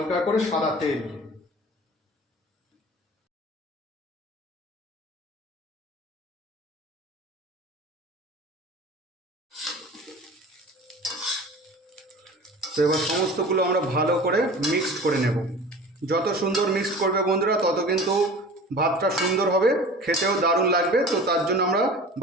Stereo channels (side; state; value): both; normal; correlation 0.39